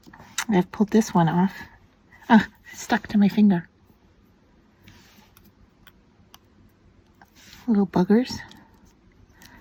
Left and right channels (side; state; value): both; identical; correlation 1.00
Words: I've pulled this one off. Oh, it's stuck to my finger. Little buggers.